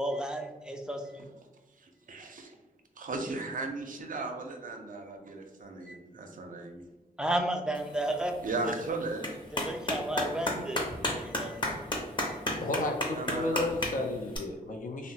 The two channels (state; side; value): normal; both; correlation 0.45